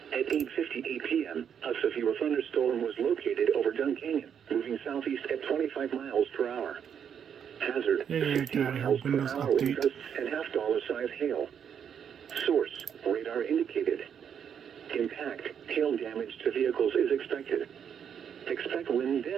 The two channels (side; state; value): left; quieter; 8.0 dB